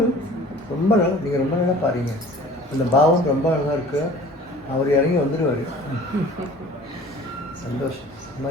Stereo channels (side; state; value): both; normal; correlation 0.46